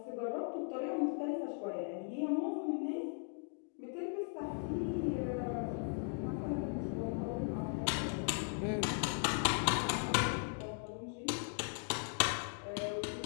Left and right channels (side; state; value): right; silent; 52 dB below the other